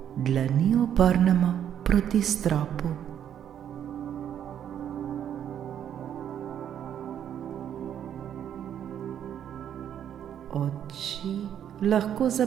dlani obrnemo proti stropu. Oči lahko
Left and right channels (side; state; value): left; quieter; 9.6 dB